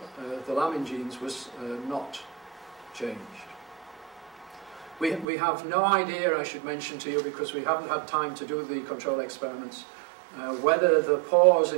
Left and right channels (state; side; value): drops out; left; at 5.2 s